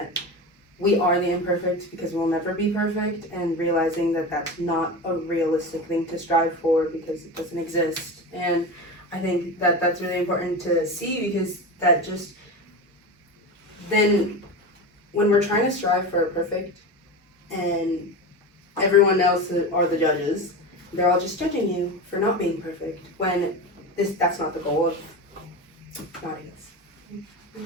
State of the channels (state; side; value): normal; both; correlation 0.25